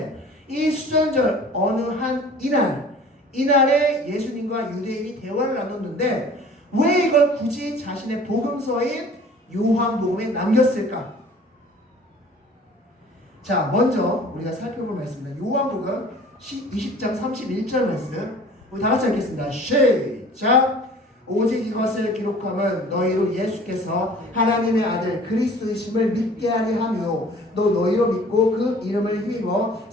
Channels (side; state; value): both; normal; correlation 0.48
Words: 이 수전절 어느 한 이날에 예수님과 유대인이 대화를 나눴는데 왜 이걸 굳이 자신의 복음서인 요한복음에 남겼을까? 자, 먼저 우리가 살펴볼 말씀입니다. 요한복음 20장 31절 말씀. 우리 다 같이 읽겠습니다. 시작! 오직 이것을 기록함은 너희로 예수께서 하나님의 아들 그리스도이심을 믿게 하려 함이요 또 너희로 믿고 그 이름을 힘입어